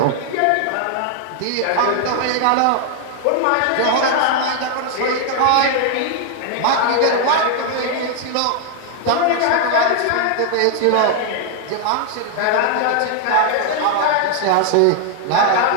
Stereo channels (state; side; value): different; both; correlation 0.00